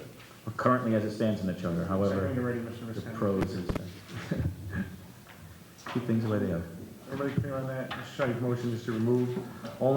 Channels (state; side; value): identical; both; correlation 1.00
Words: Or currently as it stands in the charter, however, When you're ready, Mr. the Visconti. prose is. Keep things the way they are. Everybody clear on that? Mr. Sadi's motion is to remove